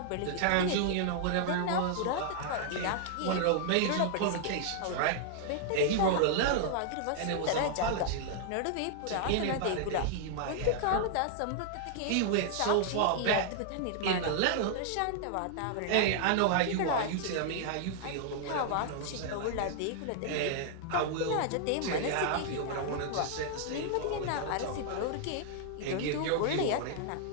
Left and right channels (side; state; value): both; different; correlation -0.01